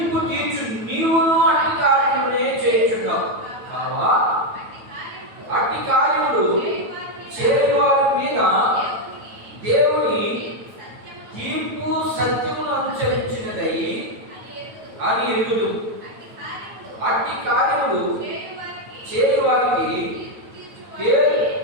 తీర్చు నీవును అట్టి కార్యములనే చేయుచున్నావు కావా, అట్టి కార్యములు చేయవారి మీద దేవుని తీర్పు సత్యమును అనుసరించినదై అని ఎరుగుదు. అట్టి కార్యములు చేయవారికి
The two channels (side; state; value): left; late; 9.1 ms